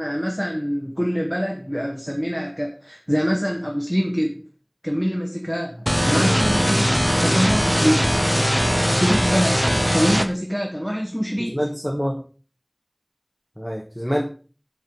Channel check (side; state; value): both; identical; correlation 1.00